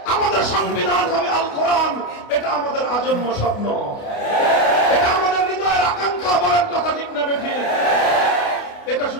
আমাদের সংবিধান হবে আল কোরআন, এটা আমাদের আজন্ম স্বপ্ন, এটা আমাদের হৃদয়ের আকাঙ্ক্ষা। বলেন কথা ঠিক না বেঠিক? এটা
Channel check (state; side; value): late; right; 29 ms